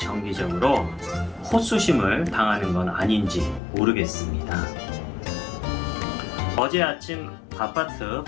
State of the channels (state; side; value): drops out; right; at 3.6 s